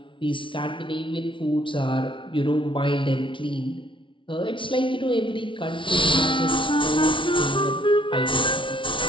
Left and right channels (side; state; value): right; late; 0.25 ms